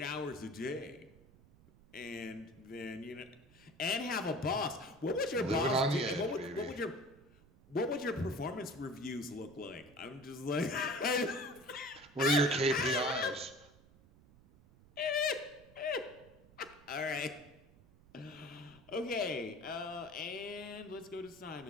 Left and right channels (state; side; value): noise; right; rumble, 25 dB below the sound